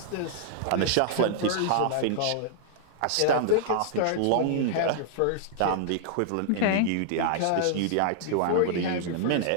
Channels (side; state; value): both; different; correlation -0.01